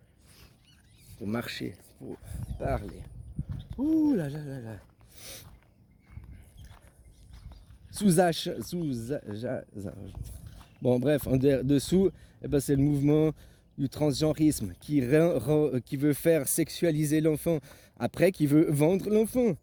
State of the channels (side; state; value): both; identical; correlation 1.00